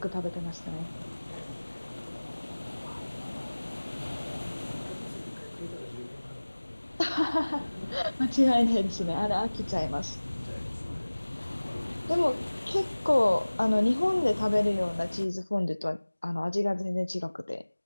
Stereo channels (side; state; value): both; inverted; correlation -1.00